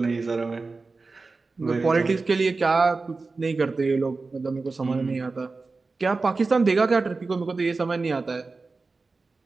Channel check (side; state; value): left; quieter; 3.9 dB